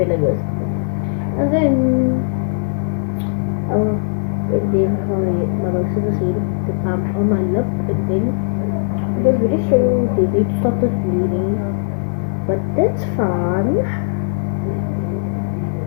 like this. And then my mouth is the palm on my lip, and then it was very slow. They did stop the bleeding, but that's fun.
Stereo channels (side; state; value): right; silent; 56 dB below the other